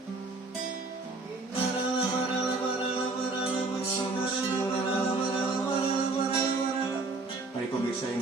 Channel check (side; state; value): left; quieter; 3.5 dB